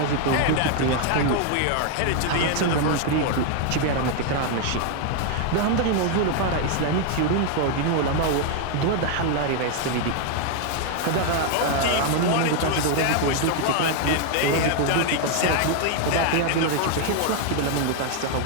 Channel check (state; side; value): different; both; correlation 0.00